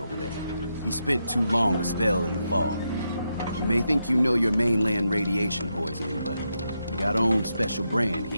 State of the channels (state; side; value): inverted; both; correlation -0.84